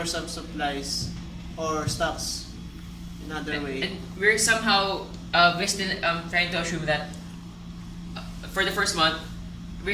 some supplies or stocks in other way. And we're somehow we're still trying to assume that for the first month we're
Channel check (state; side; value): identical; both; correlation 1.00